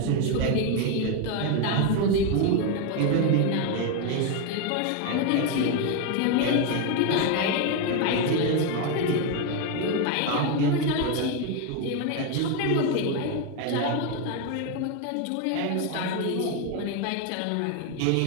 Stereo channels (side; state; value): both; different; correlation 0.02